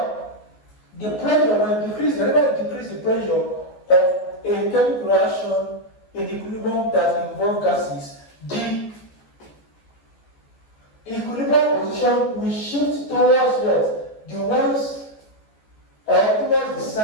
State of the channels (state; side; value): late; right; 14 ms